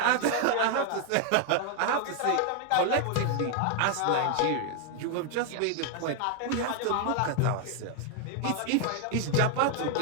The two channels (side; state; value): both; different; correlation 0.00